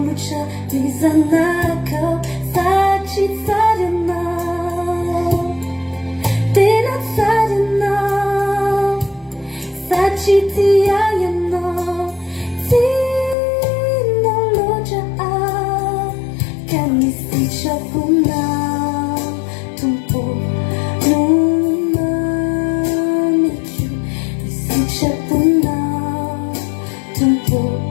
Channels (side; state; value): right; drops out; at 13.4 s